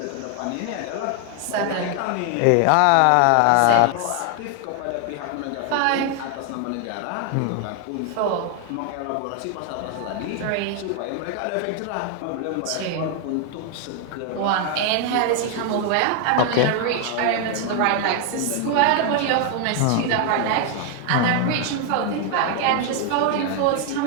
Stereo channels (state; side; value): different; both; correlation 0.00